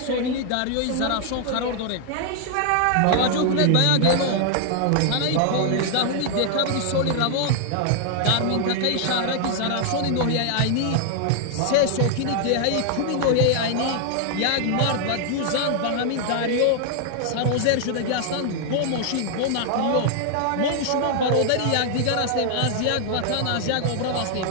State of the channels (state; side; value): different; both; correlation 0.00